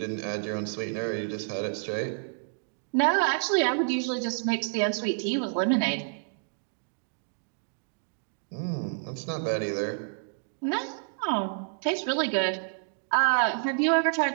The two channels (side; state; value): left; silent; digital silence